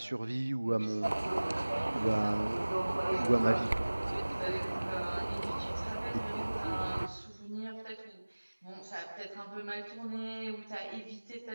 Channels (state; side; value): inverted; both; correlation -1.00